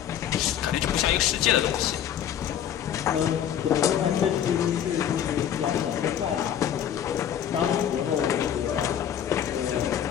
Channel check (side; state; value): right; quieter; 9.8 dB